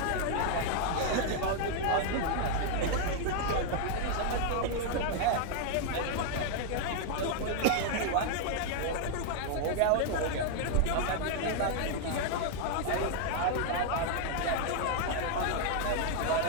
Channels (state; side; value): different; both; correlation 0.00